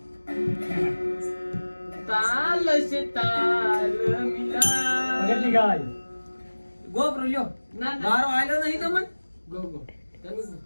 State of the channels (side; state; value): both; inverted; correlation -1.00